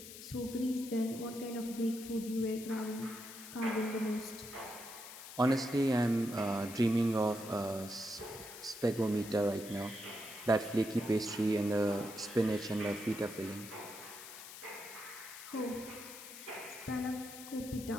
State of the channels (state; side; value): noise; left; hiss, 13 dB below the sound